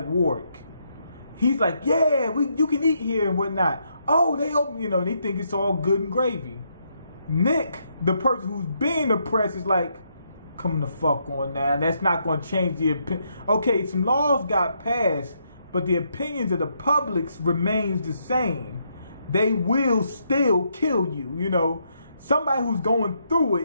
Warwick. He's like, "Yeah, you can eat here and whatnot." Oh, they open, they think it's all good and gravy. Nick, the person who's being oppressed, is like, "Come the fuck on now. That's not going to change the opinion." Okay, some laws got passed, but the opinions of the public remains the same. They will still kill you, Somebody who's going through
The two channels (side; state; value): both; inverted; correlation -0.77